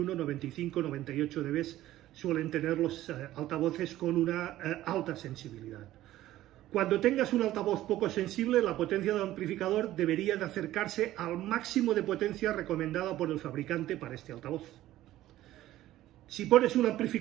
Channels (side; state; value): left; quieter; 14.6 dB